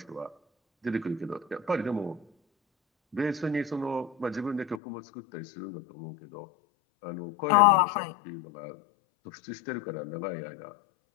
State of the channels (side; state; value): right; drops out; at 4.8 s